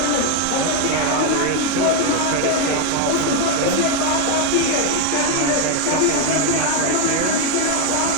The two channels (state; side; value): different; both; correlation 0.01